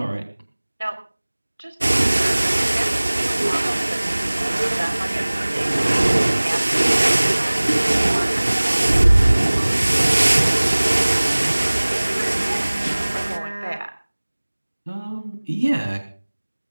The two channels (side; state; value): both; inverted; correlation -1.00